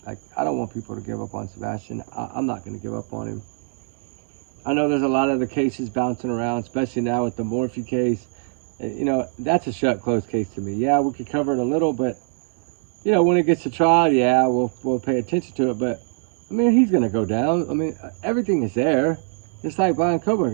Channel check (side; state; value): left; silent; 63 dB below the other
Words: Like I don't want people to give up on Sebastian. I'm not going to give up on him. I know there's a lot of the cases bouncing around, especially now with the Morphe case. You know, that's a shut closed case to me. Yeah, we could cover it a little, but you know, when it gets to trial, yeah, we'll pay attention to it. But I mean, he's going to go down. I mean, everything is there. Just like Brian